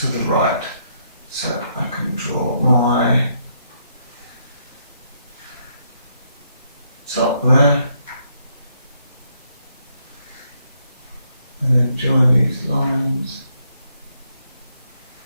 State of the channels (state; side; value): inverted; both; correlation -0.74